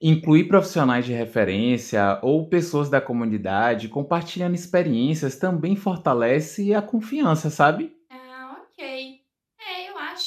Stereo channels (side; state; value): both; identical; correlation 1.00